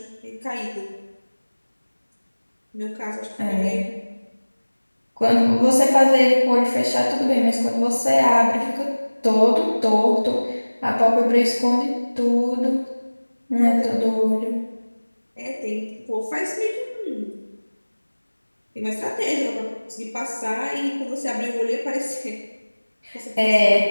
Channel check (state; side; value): inverted; both; correlation -1.00